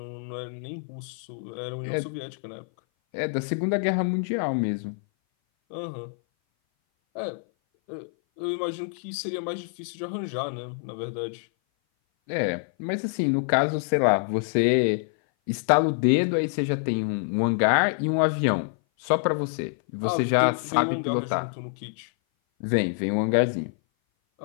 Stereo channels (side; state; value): right; silent; 57 dB below the other